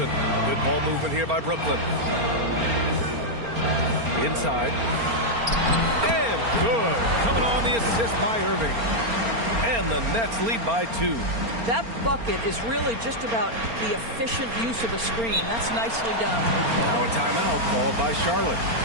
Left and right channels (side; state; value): left; late; 4.3 ms